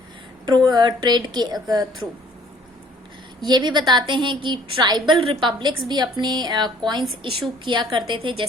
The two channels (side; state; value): both; normal; correlation 0.57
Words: ट्रेड के थ्रू। ये भी बताते हैं कि ट्राइबल रिपब्लिक्स भी अपने कॉइन्स इशू किया करते थे,